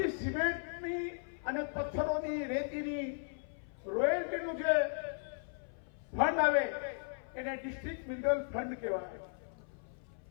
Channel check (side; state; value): right; silent; 53 dB below the other